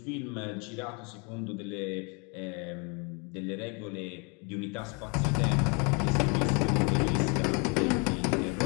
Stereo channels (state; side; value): quieter; right; 33.1 dB